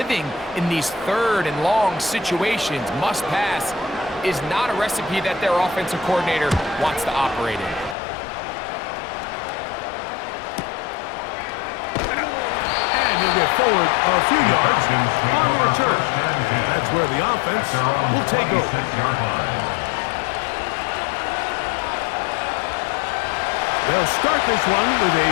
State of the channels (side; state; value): right; drops out; at 8.0 s